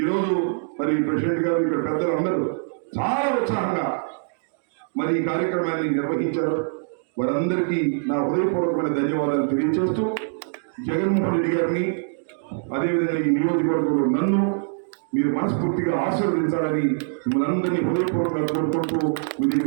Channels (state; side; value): silent; left; digital silence